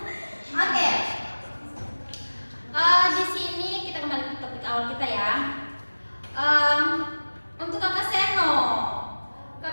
Oke. Di sini kita kembali ke topik awal kita ya. Untuk Kakak Seno,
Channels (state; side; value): inverted; both; correlation -1.00